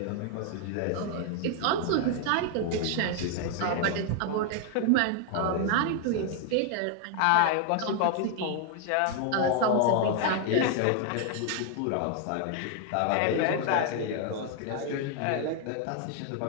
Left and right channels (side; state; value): both; different; correlation 0.00